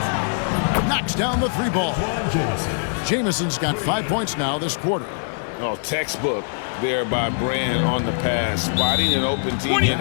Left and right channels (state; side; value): silent; right; digital silence